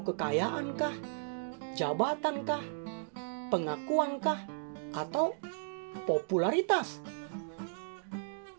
kekayaankah? Jabatankah? Pengakuankah? Atau popularitas?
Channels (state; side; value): silent; left; digital silence